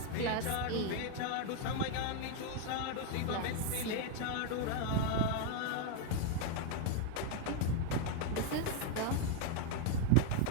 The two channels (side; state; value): both; different; correlation 0.00